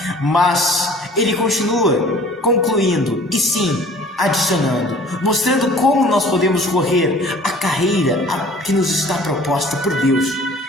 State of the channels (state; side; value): normal; both; correlation 0.50